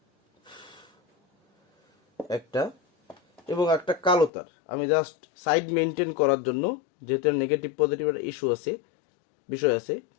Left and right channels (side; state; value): right; drops out; at 4.3 s